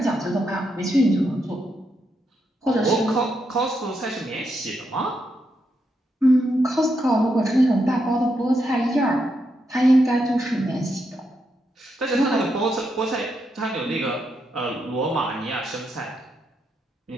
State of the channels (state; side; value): normal; both; correlation 0.82